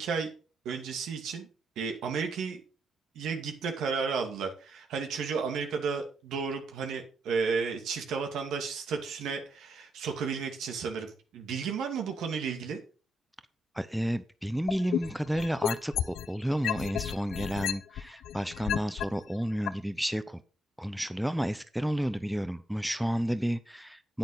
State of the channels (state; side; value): normal; both; correlation 0.80